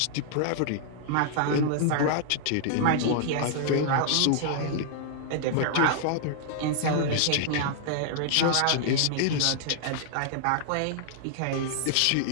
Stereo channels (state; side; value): different; both; correlation -0.01